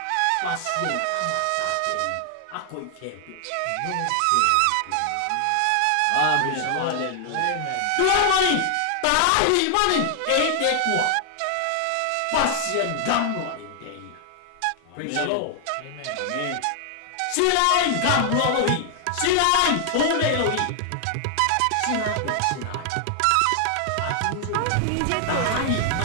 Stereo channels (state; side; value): different; both; correlation 0.00